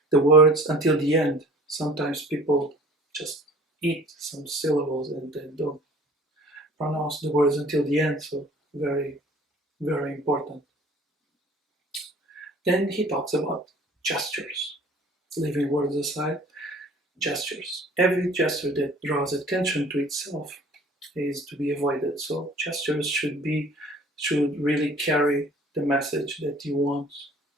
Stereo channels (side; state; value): both; normal; correlation 0.49